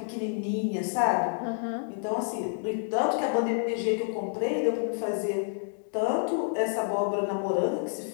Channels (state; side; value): silent; right; digital silence